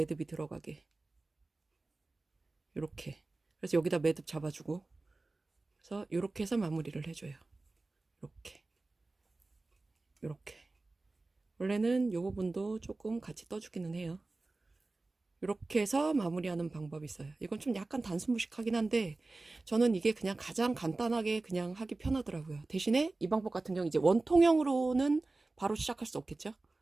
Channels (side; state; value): left; quieter; 3.3 dB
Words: 들어가게 이렇게, 그래서 여기다 매듭 잡아주고, 그래서 이렇게 해서 마무리를 해줘요. 이렇게 원래는 이 부분도 조금 같이 떠주기는 해요. 이렇게 해서 마무리하는 방법이 있어요. 이건 좀 약간 단순무식하긴 한데 저는 이게 그냥 가장 간단하게 그냥 하기 편하더라고요. 대신에 이 방법 같은 경우 이제 원통형으로는 바로 시작할 수 없겠죠.